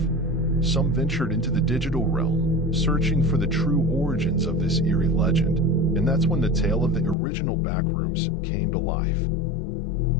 Some ventured into the digital realm, searching for the true origins of this eerie legend, and that's when the tale of the original Backrooms came to life.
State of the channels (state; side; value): drops out; right; at 7.2 s